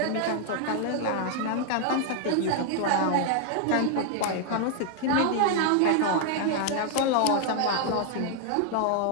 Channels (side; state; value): both; different; correlation 0.00